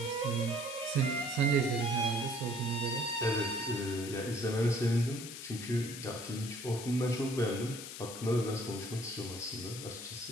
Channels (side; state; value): left; noise; hiss, 10 dB below the sound